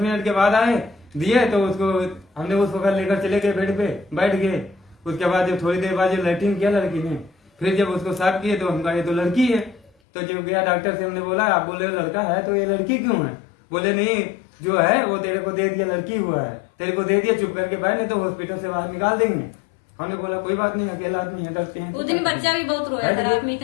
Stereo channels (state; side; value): drops out; right; at 9.9 s